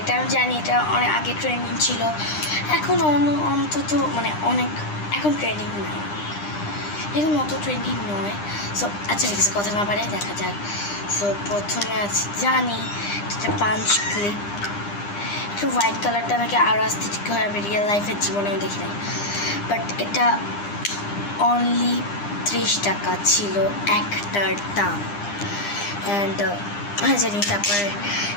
এটা আমি জানি এটা অনেক আগে ট্রেন্ডিং ছিল, এখন অন্তত মানে অনেক এখন ট্রেন্ডিং নয়, এখন অত ট্রেন্ডিং নয়। সো আচ্ছা ঠিক আছে, কথা না বাড়াই দেখা যাক। সো প্রথমে আছে জানি এটা পাঞ্চ ক্লিপ, একটু হোয়াইট কালারটা আমাকে আরও আস্থেটিক হয়, আমি রিয়েল লাইফের জীবনেও দেখি নাই। বাট এটা অনলি 30 টাকা ছিল একটার দাম। অ্যান্ড জানি তারপরে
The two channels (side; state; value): right; late; 9.9 ms